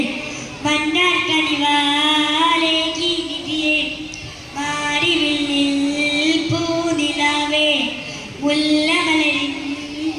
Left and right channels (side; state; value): both; identical; correlation 1.00